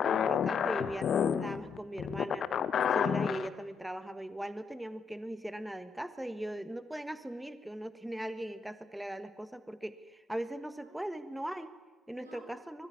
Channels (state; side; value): quieter; right; 4.6 dB